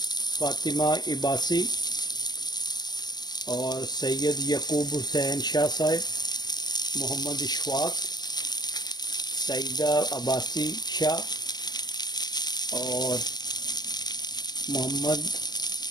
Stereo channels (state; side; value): late; right; 0.20 ms